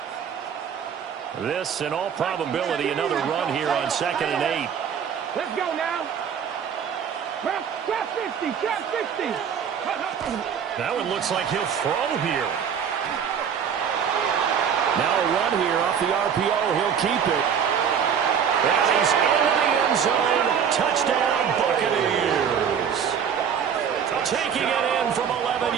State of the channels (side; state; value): left; quieter; 7.7 dB